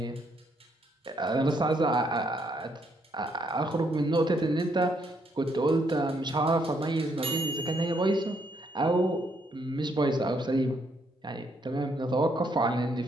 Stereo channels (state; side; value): normal; both; correlation 0.73